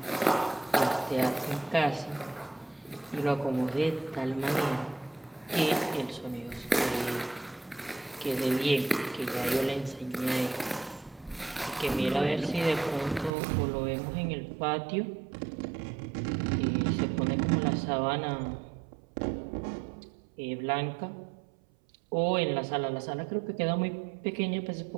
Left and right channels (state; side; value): drops out; left; at 13.3 s